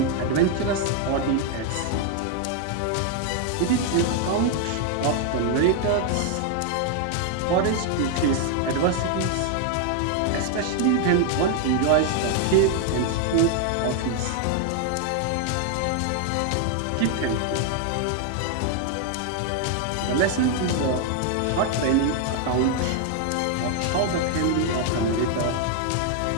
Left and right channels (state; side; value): different; both; correlation 0.00